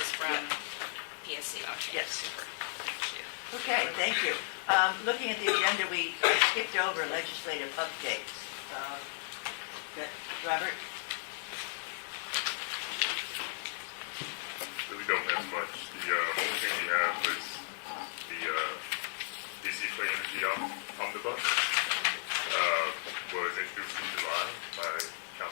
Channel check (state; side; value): silent; right; digital silence